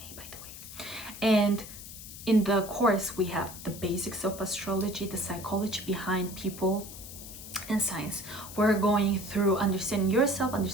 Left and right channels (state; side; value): noise; left; hiss, 13 dB below the sound